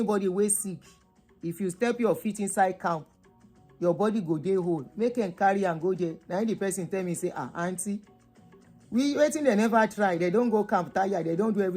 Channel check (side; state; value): both; identical; correlation 1.00